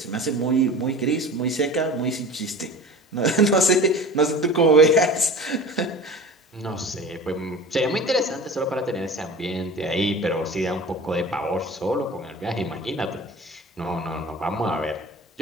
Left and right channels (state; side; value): normal; both; correlation 0.37